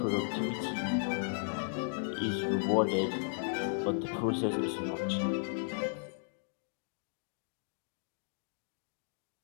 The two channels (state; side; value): silent; right; digital silence